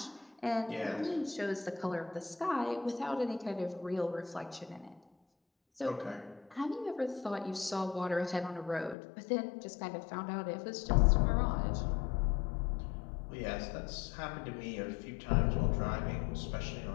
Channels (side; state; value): right; drops out; at 9.0 s